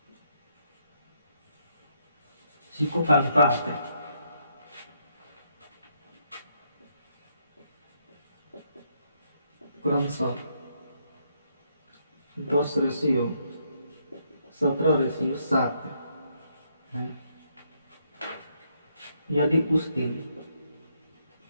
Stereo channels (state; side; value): inverted; both; correlation -0.75